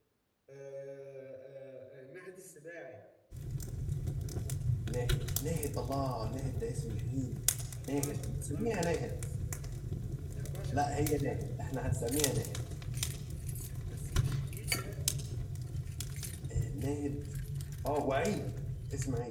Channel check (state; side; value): identical; both; correlation 1.00